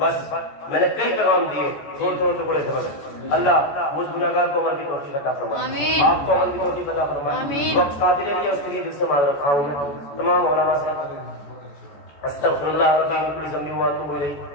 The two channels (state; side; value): late; right; 14 ms